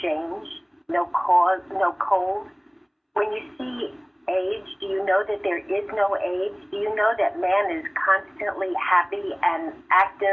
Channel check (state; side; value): identical; both; correlation 1.00